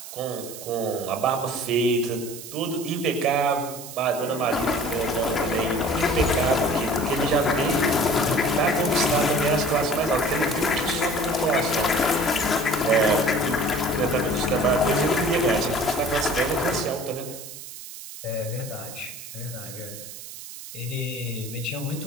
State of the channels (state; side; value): noise; right; hiss, 13 dB below the sound